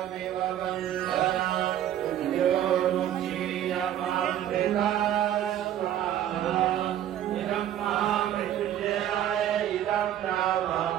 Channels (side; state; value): left; quieter; 11.3 dB